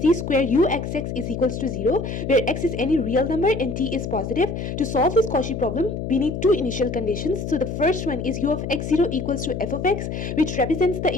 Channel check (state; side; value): noise; left; hum, 5 dB below the sound